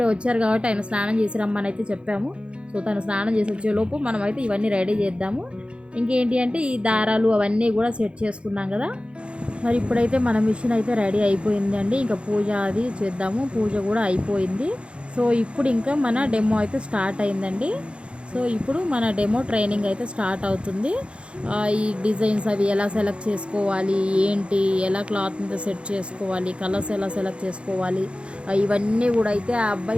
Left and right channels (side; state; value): left; late; 0.058 ms